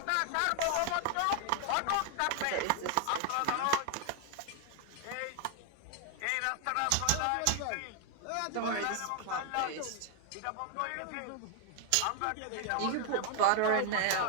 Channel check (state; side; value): different; both; correlation 0.00